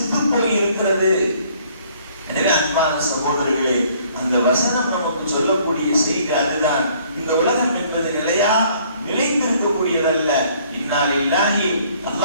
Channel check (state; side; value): inverted; both; correlation -0.61